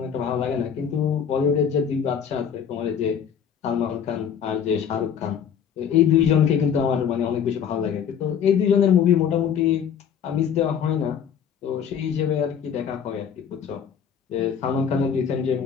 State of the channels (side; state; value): right; quieter; 7.9 dB